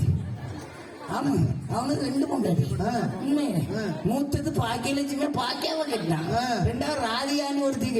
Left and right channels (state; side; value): identical; both; correlation 1.00